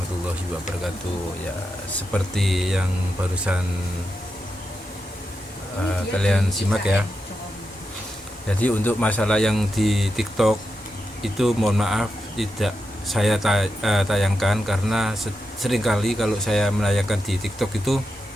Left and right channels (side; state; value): both; normal; correlation 0.87